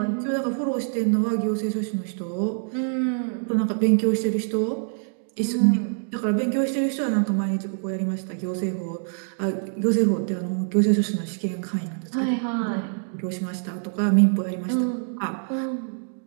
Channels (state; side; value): silent; left; digital silence